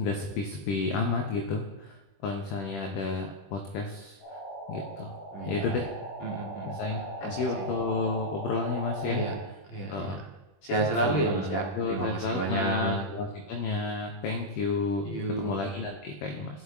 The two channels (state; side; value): late; right; 20 ms